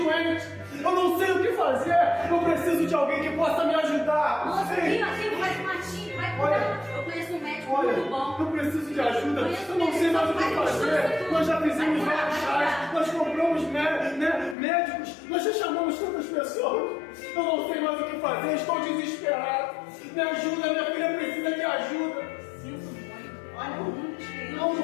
eu não sei o que fazer, eu preciso de alguém que possa me ajudar. Nossa, aqui faz um matinho, vai cuidar. Eu conheço um médico muito bom. Eu preciso de ajuda, eu não sei mais o que fazer. Nós já fizemos vários chás, nós compramos médicos, nós já chamamos tantas pessoas. Eu não sei mais o que fazer, estou desesperado. Me ajuda, minha filha precisa de ajuda. Olha, não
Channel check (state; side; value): drops out; right; at 14.6 s